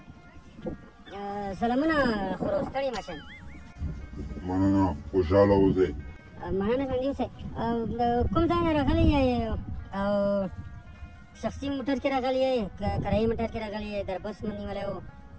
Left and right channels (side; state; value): both; identical; correlation 1.00